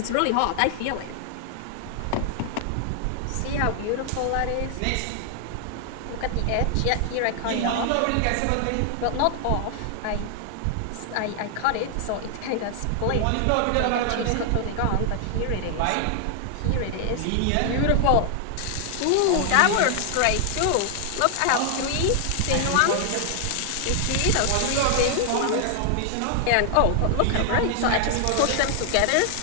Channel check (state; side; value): different; both; correlation 0.00